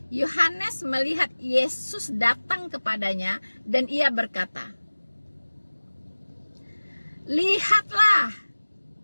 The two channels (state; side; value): inverted; both; correlation -1.00